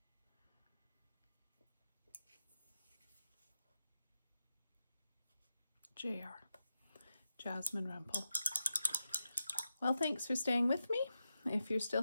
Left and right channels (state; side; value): inverted; both; correlation -0.87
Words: Jasmine Rumple. Well, thanks for staying with me. If you're still